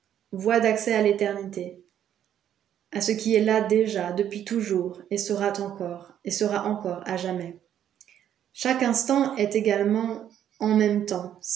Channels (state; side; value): quieter; left; 10.2 dB